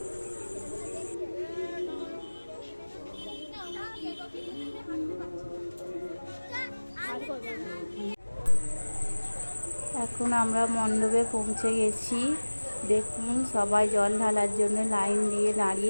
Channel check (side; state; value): both; inverted; correlation -1.00